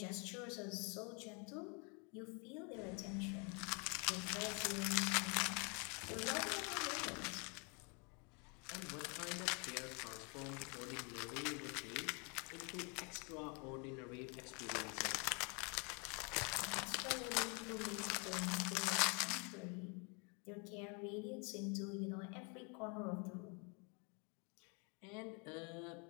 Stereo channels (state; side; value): quieter; right; 34.3 dB